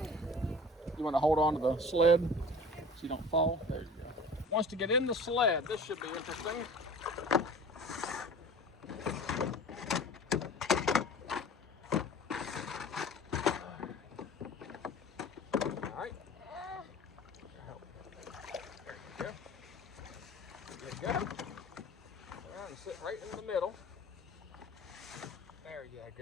You want to hold on to the sled so you don't fall? There you go. Once to get in the sled, this should be interesting. Sit right in the middle. There you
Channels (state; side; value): normal; both; correlation 0.42